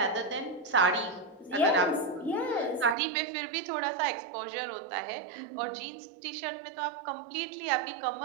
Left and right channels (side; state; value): left; drops out; at 3.0 s